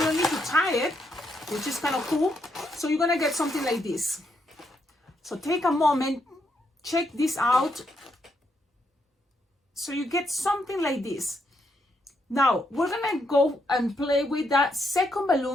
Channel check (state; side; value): normal; both; correlation 0.78